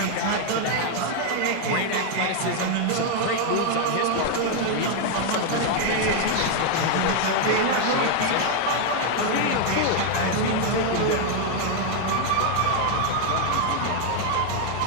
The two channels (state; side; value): different; both; correlation 0.00